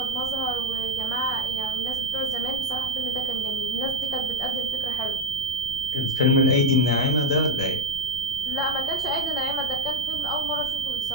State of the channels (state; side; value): noise; left; rumble, 16 dB below the sound